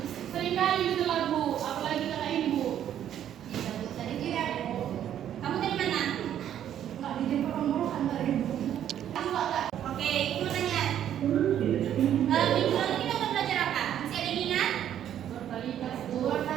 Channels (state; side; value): quieter; left; 10.5 dB